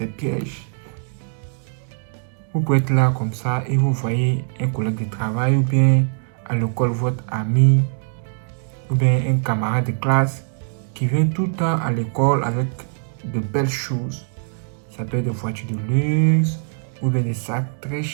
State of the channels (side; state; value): left; silent; digital silence